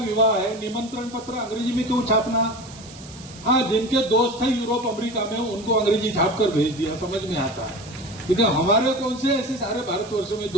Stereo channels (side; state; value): right; noise; hiss, 19 dB below the sound